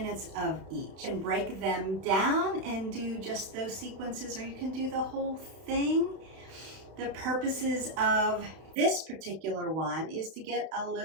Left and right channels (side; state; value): left; late; 31 ms